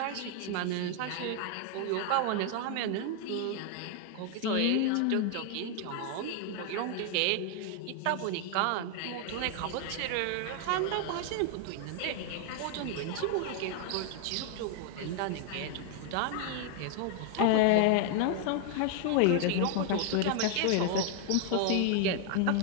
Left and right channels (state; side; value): different; both; correlation 0.00